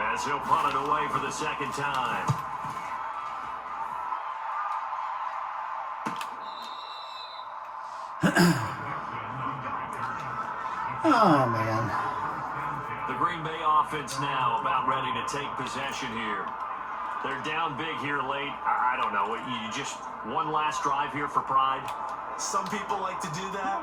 as he'll punt it away for the 2nd time. Oh man. The Green Bay offense now about ready to take possession here. They're down big here late. I don't know. You just one last drive here for pride. Some people like to do that.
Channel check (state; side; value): identical; both; correlation 1.00